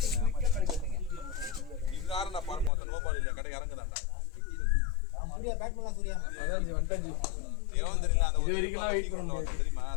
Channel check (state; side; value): drops out; right; at 2.7 s